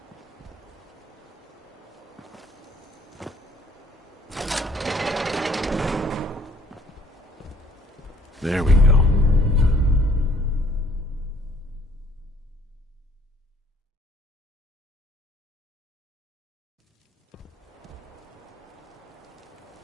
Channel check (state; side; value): normal; both; correlation 0.60